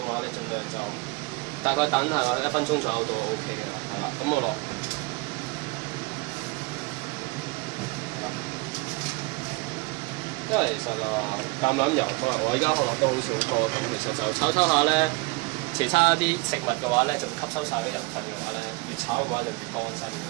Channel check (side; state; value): left; quieter; 26.2 dB